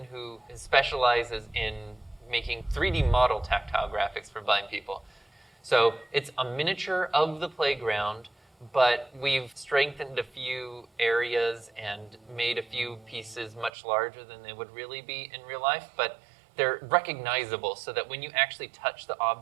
who specializes in making 3D model tactile graphics for blind people. So it's a miniature of the playground, but we've strengthened a few areas and made a few pieces much larger than they would really be in real life, but they're recognizable so that when you actually touch the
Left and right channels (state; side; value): drops out; left; at 13.7 s